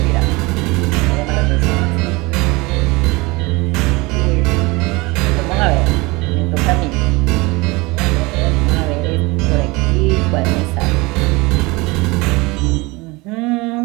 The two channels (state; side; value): quieter; left; 23.9 dB